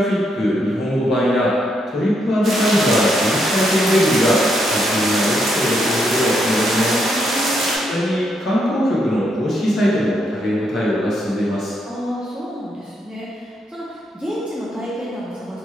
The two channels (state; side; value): normal; both; correlation 0.77